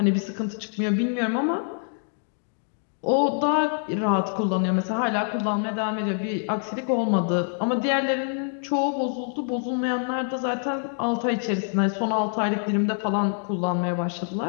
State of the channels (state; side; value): silent; right; 61 dB below the other